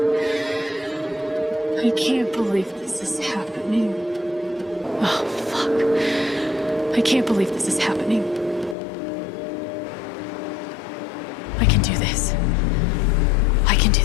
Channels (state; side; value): drops out; right; at 8.8 s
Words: I can't believe this is happening. Oh, fuck. I can't believe this is happening. I can do this. I can do